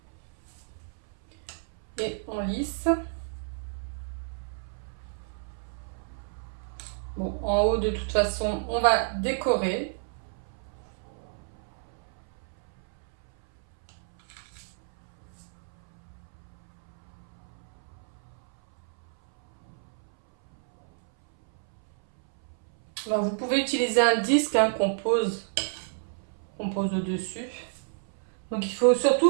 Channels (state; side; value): silent; left; 58 dB below the other